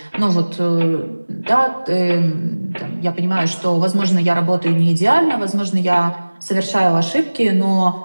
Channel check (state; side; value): inverted; both; correlation -1.00